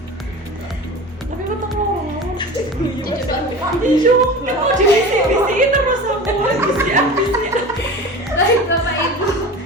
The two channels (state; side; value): normal; both; correlation 0.34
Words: Tapi betul ngomong. Iya, mau divisi terus aku visi. Baik Bapak Ibu.